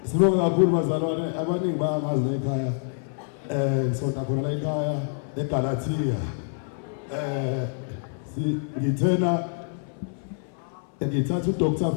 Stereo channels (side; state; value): right; silent; 58 dB below the other